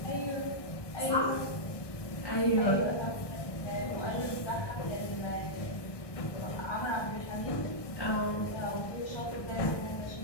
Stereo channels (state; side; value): late; right; 1.2 ms